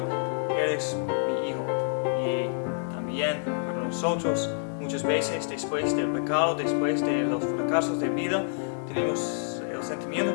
eres mi hijo." Y también para nosotros, muchas veces después del pecado, después de los fracasos de vida, tenemos el sentimiento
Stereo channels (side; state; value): right; silent; digital silence